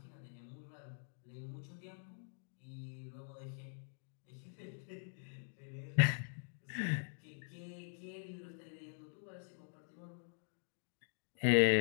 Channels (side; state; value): right; silent; digital silence